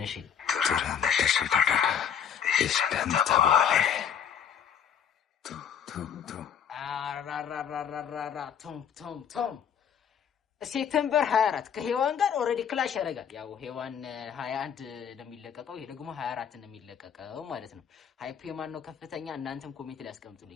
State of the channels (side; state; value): right; quieter; 8.2 dB